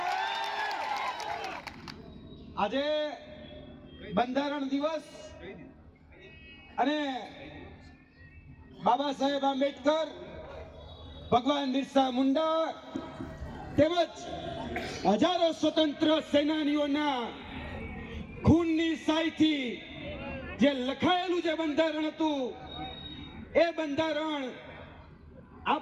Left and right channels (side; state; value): both; identical; correlation 1.00